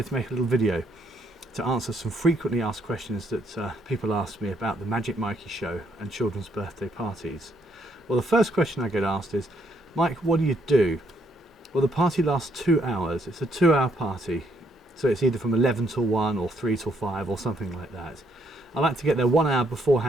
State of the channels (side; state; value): both; normal; correlation 0.72